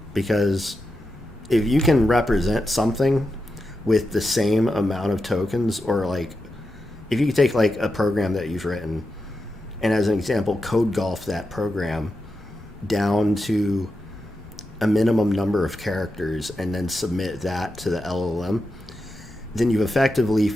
because if you can represent something with the same amount of tokens, or like if you could take like a program that you've written and as an example code golf that program down to a minimum number of characters and then submit that to the LLM, then you've effectively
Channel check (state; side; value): normal; both; correlation 0.89